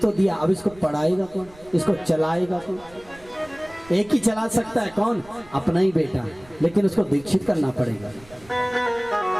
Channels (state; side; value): noise; right; rumble, 24 dB below the sound